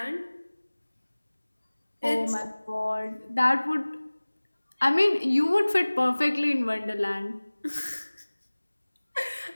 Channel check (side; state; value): both; inverted; correlation -1.00